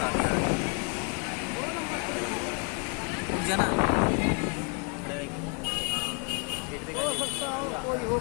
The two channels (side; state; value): right; quieter; 35.2 dB